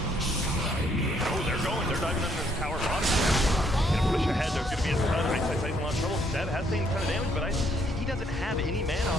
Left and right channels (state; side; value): normal; both; correlation 0.69